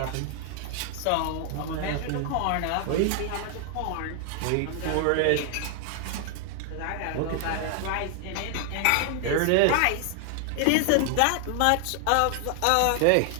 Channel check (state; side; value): different; both; correlation 0.00